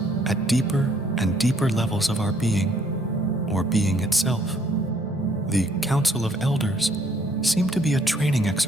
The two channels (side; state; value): both; normal; correlation 0.65